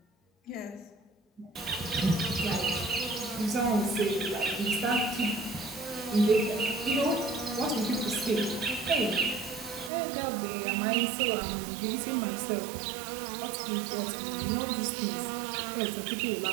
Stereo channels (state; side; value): drops out; left; at 9.9 s